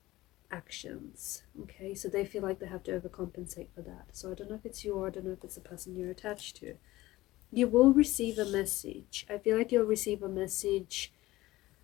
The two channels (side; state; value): right; quieter; 17.9 dB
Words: actions. Okay, so they feel like they have to overcompensate for that. So I don't know if it's you, or I don't know if it's the person you're attached to. You will receive a message. I feel like you'll receive a message,